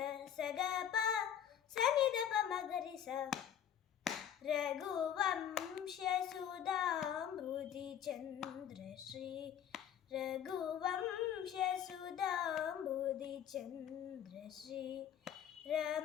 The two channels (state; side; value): quieter; right; 9.5 dB